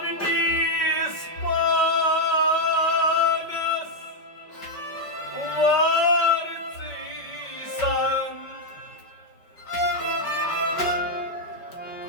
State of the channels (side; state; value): right; late; 5.2 ms